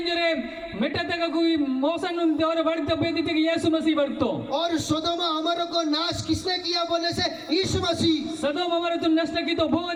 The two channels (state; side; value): identical; both; correlation 1.00